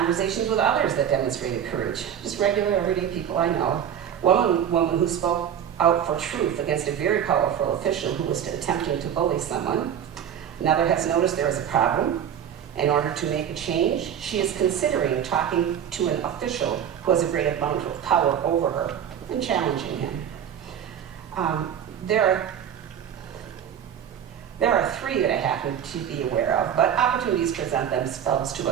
with others that demonstrated courage, just regular, everyday people I know. One woman who spoke out for truth against a very powerful official who was attempting to bully someone. Another has noticed there is a problem. In order to make a change, she is considering talking to an official who has a great amount of power over her and challenging him. There are three that I happen to be aware of, but opportunities present themselves to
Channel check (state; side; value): quieter; left; 9.2 dB